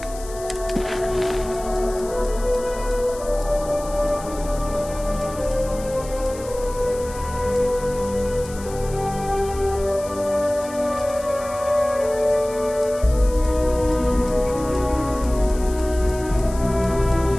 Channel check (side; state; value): left; noise; hiss, 16 dB below the sound